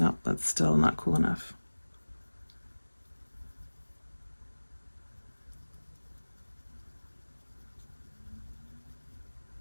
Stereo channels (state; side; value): inverted; both; correlation -1.00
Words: that's still not cool enough.